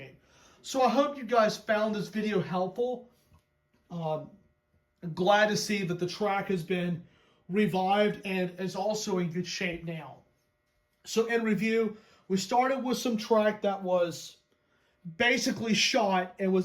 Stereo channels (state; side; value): identical; both; correlation 1.00